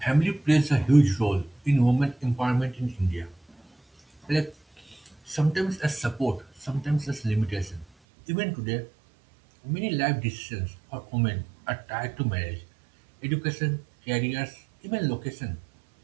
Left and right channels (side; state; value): left; drops out; at 7.9 s